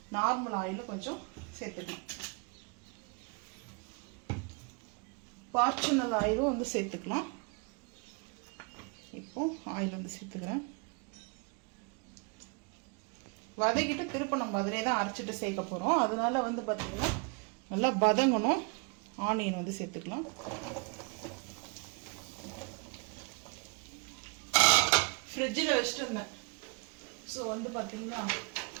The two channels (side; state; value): left; quieter; 33.7 dB